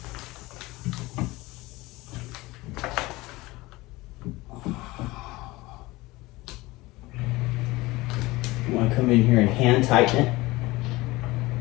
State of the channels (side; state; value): right; quieter; 20.7 dB